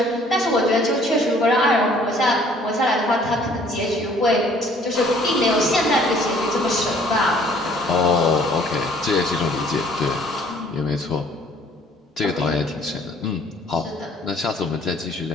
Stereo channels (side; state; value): both; normal; correlation 0.58